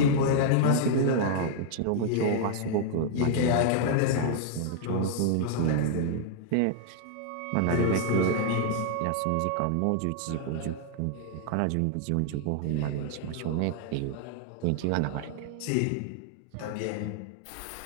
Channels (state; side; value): different; both; correlation -0.01